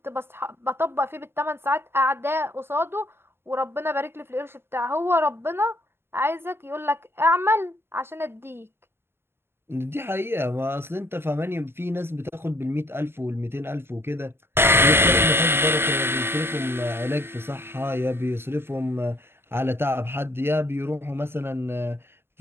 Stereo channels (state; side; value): late; left; 0.11 ms